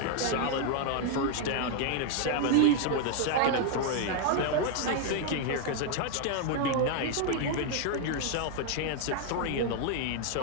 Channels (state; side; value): different; both; correlation 0.00